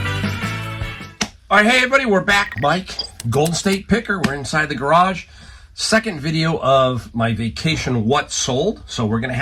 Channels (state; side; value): identical; both; correlation 1.00